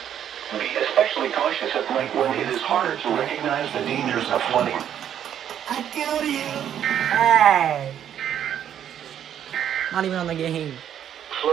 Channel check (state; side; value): quieter; left; 9.7 dB